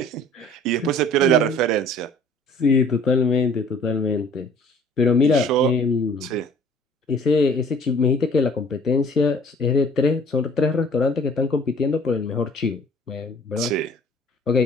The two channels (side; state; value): both; normal; correlation 0.52